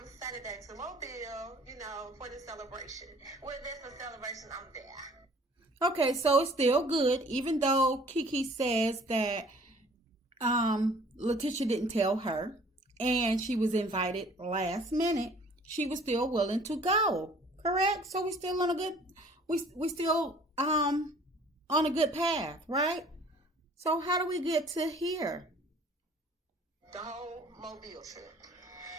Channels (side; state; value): both; normal; correlation 0.53